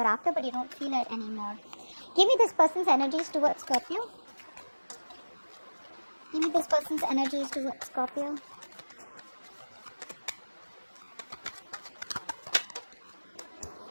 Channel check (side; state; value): both; inverted; correlation -1.00